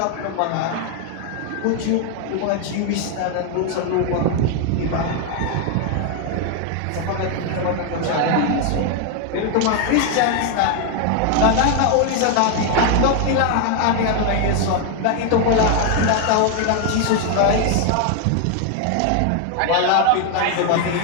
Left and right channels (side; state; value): both; different; correlation 0.01